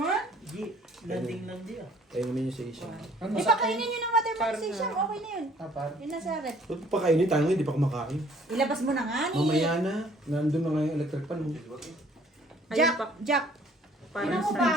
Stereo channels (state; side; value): normal; both; correlation 0.57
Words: Di, landing lang di ah. Ayun naman yung sa Asia. Di pa kainin yun ng watermelon si Sham. Okay na yun. Yun na sa rep. Ba't pa kainin tayo ngayon, hindi pa kumakain. Ilabas mo na nga ni. Mamaya na, nandun na nga yung electric fan. Jack, Jack. Ginawa parang mo ba?